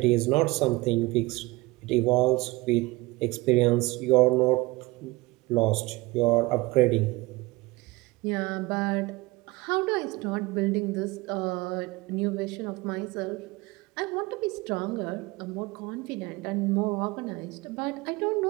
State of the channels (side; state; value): left; quieter; 22.1 dB